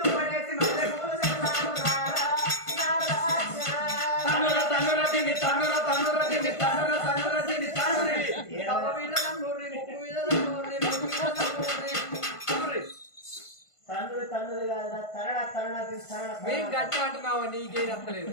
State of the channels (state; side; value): late; right; 1.5 ms